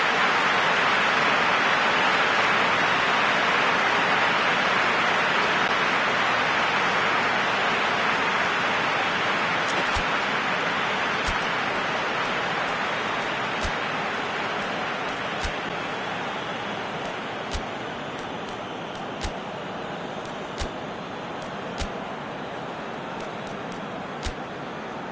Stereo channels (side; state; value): both; identical; correlation 1.00